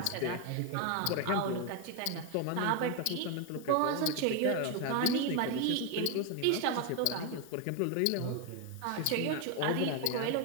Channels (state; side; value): different; both; correlation 0.01